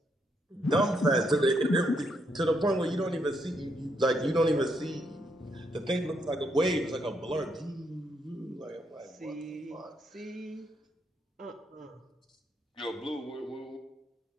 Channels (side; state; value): both; normal; correlation 0.77